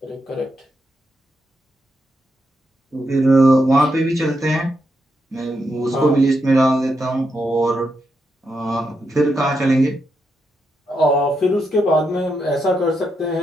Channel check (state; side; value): normal; both; correlation 0.83